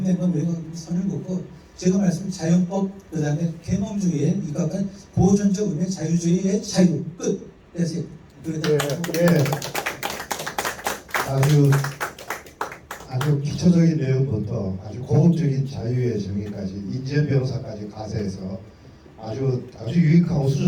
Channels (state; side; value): identical; both; correlation 1.00